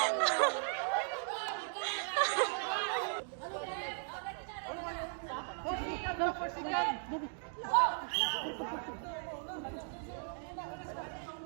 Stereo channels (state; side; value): silent; left; 53 dB below the other